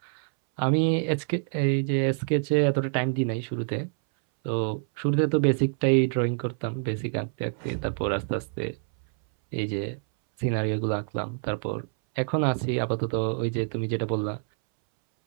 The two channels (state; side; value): silent; left; 60 dB below the other